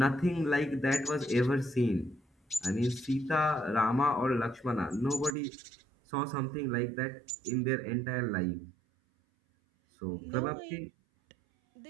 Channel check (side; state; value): left; drops out; at 5.4 s